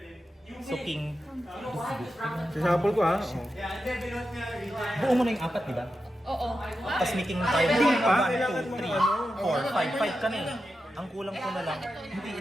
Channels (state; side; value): normal; both; correlation 0.90